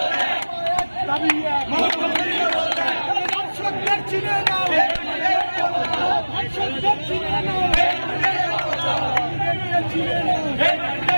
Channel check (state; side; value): inverted; both; correlation -1.00